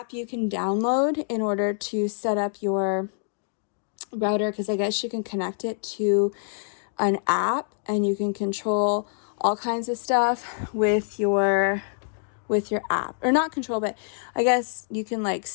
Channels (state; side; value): silent; right; digital silence